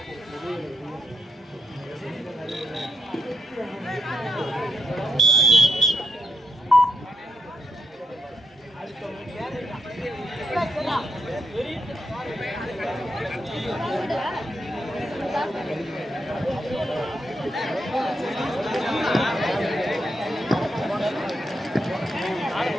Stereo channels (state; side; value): normal; both; correlation 0.79